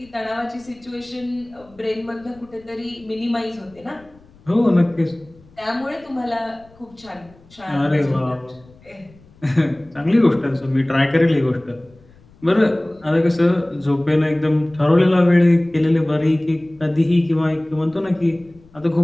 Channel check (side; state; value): left; noise; rumble, 27 dB below the sound